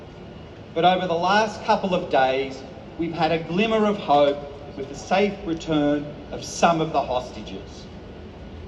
But over the last couple of days, we've had a glimmer of hope with the safe return of some of the hostages.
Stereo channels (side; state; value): both; identical; correlation 1.00